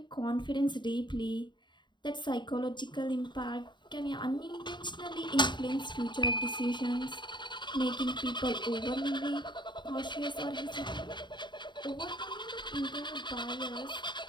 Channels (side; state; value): right; late; 0.22 ms